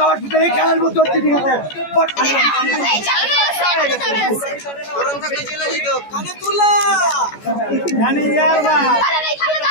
ভিতরে খেলার মতো হচ্ছে ঠিক আছে।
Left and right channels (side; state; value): right; late; 14 ms